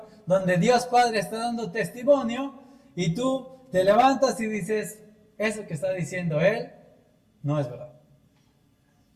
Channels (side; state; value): both; identical; correlation 1.00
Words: donde Dios Padre está dando testimonio y tú te levantas y dices, eso que está diciendo Él no es verdad.